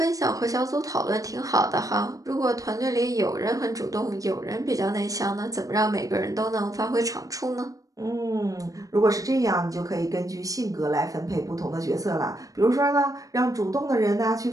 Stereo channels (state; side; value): late; left; 0.17 ms